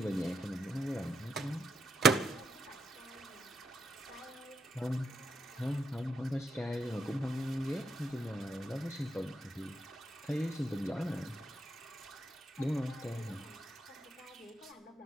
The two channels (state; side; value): normal; both; correlation 0.79